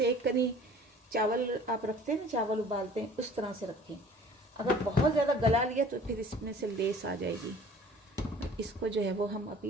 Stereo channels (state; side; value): normal; both; correlation 0.50